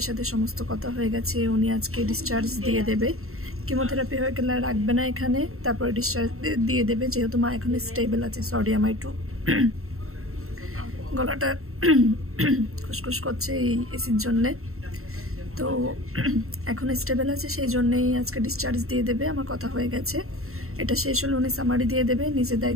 সাথে সমস্ত কথা হয়ে গেছে, উনি আজকে ডিসচার্জ দিয়ে দেবে। কিমোথেরাপি হয়ে গেলে রাখবে না এখানে, তারপরে ডিসচার্জ দিয়ে দেবে, যেহেতু মা এখন স্টেবল আছে। সরি, আমার একটু গলাটা খুসখুস করছে এই এসির জন্যে। তো এখন স্টেবল আছে, সেই জন্যই আজকে ডিসচার্জ দিয়ে দেবে। আমার কথা হয়ে গেছে, এটা শেষ হলে উনি সামারি দিয়ে দেবে, নিজের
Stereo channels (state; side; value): late; left; 0.63 ms